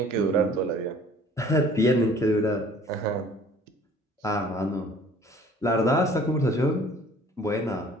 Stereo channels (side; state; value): both; normal; correlation 0.52